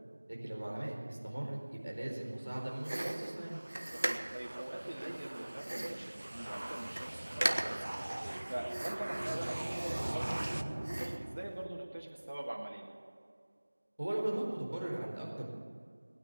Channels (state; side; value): inverted; both; correlation -1.00